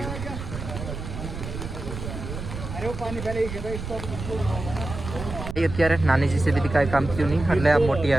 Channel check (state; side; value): noise; right; rumble, 8 dB below the sound